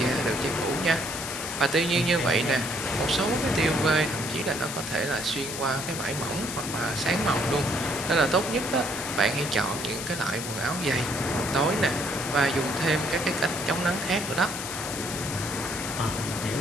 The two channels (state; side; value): noise; left; hiss, 7 dB below the sound